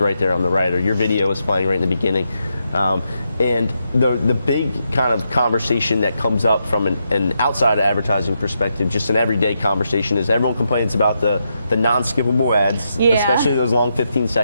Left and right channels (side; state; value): both; inverted; correlation -0.83